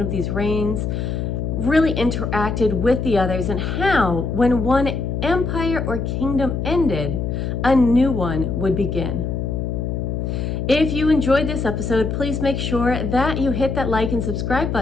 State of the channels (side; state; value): left; noise; hum, 2 dB below the sound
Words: these reigns really interacted with the others, and how, when one empire or kingdom ended, a new one would begin. If you enjoyed this episode, please make sure that you hit that like and subscribe